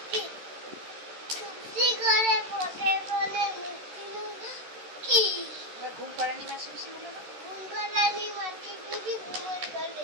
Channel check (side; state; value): left; late; 13 ms